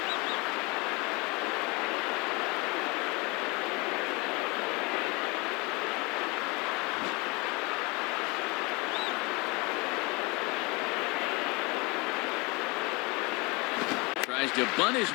Tries to bunt his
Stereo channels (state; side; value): quieter; right; 26.8 dB